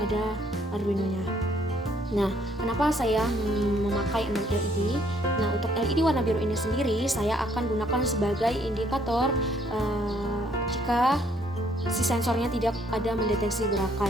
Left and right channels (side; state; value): both; normal; correlation 0.66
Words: Arduino-nya. Nah, kenapa saya memakai 6 LED? Nah, untuk LED warna biru ini sendiri saya akan gunakan sebagai indikator jika si sensornya tidak ada mendeteksi